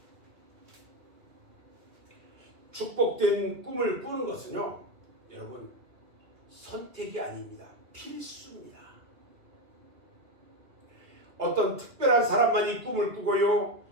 축복된 꿈을 꾸는 것은요, 여러분, 선택이 아닙니다. 필수입니다. 어떤 특별한 사람만이 꿈을 꾸고요,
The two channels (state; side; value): late; left; 2.0 ms